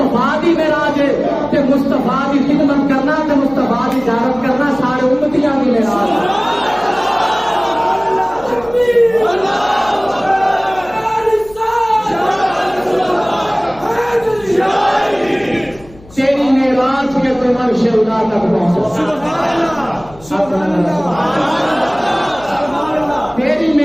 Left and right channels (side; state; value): left; noise; hum, 23 dB below the sound